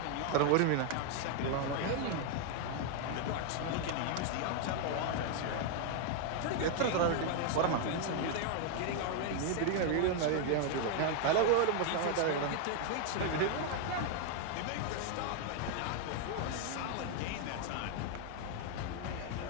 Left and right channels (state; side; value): different; both; correlation 0.00